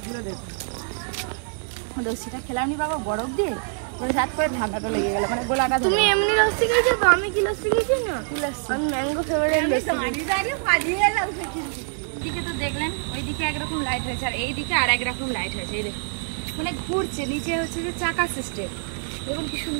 দেখুন। লস্যিটা খেলাম নি বাবা বরফ দিয়ে, ওই হাত করে ঠান্ডাটা লেগে গেল, মানে গোলাটা। তুমি এমনি লস্যি খেয়েছো তো, আমি কি লস্যি খেয়েছি না? কি লস্যি? আমি ম্যাঙ্গো ফ্লেভারের লস্যি। এদিকে তো দেখলেন ওইদিকে একরকম লাইট হয়েছে, আর এইদিকে আর একরকম লাইট হয়েছে। এই দেখুন মানে ঘুরছে, নিচে হচ্ছে যে চাকা সিস্টেম, দেখুন কি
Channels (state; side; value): silent; left; 57 dB below the other